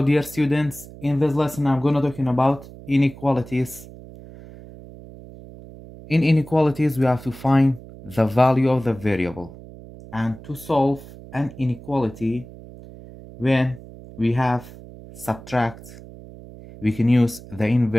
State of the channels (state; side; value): noise; right; hum, 17 dB below the sound